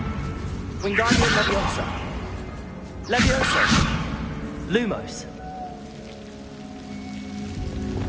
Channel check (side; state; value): both; identical; correlation 1.00